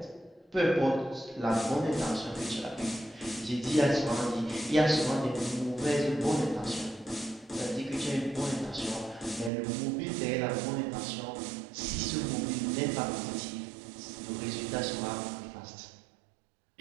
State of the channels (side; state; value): left; drops out; at 9.5 s